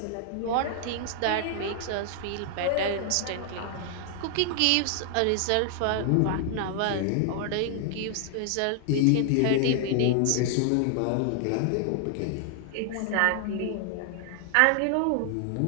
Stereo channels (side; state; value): both; different; correlation 0.00